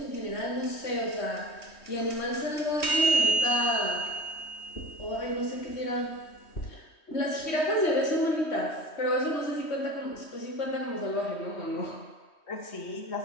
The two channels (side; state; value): right; late; 3.2 ms